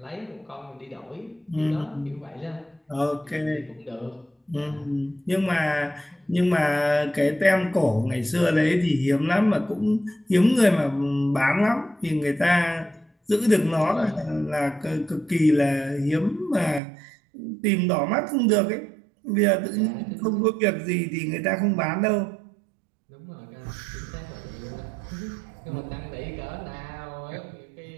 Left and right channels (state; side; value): drops out; left; at 16.8 s